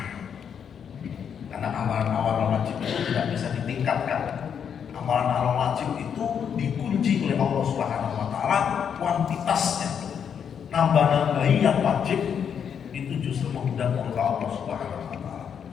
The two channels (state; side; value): quieter; right; 7.7 dB